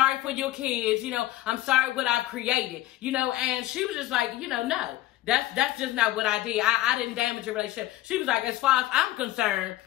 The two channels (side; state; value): right; quieter; 15.6 dB